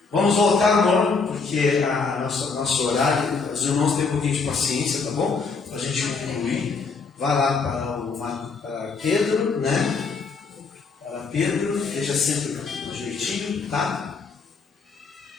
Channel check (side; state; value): right; quieter; 4.7 dB